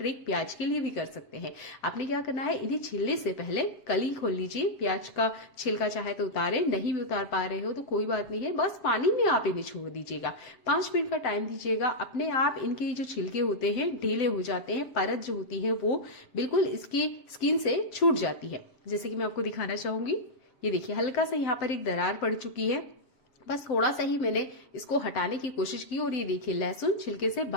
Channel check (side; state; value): right; late; 7.7 ms